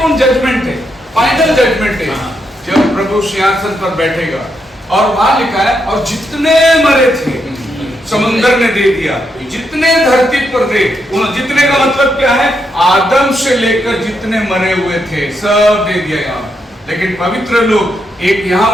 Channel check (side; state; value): both; normal; correlation 0.80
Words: जजमेंट है, फाइनल जजमेंट है, जब प्रभु सिंहासन पर बैठेगा। और वहां लिखा है और जितने मरे थे समुद्र ने दे दिया, जितने धरती पर थे, जितने का मतलब क्या है, आदम से लेकर जितने मरे हुए थे सब दे दिया यहाँ। लेकिन पवित्र लोग एक यहाँ